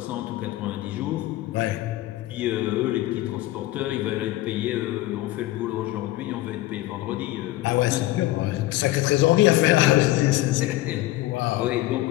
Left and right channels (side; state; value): right; quieter; 16.8 dB